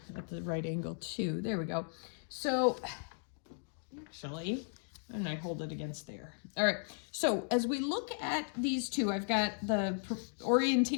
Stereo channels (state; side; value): silent; right; 54 dB below the other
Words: at the right angle too. There we go. So actually, and I hold it against there. All right, so as we look at these two, I've got the